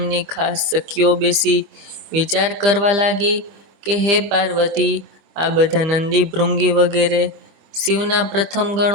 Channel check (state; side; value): late; left; 25 ms